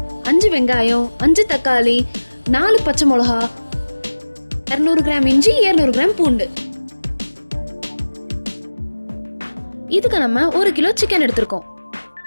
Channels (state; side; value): inverted; both; correlation -1.00